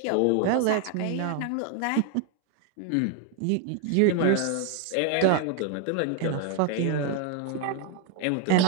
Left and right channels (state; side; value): different; both; correlation 0.01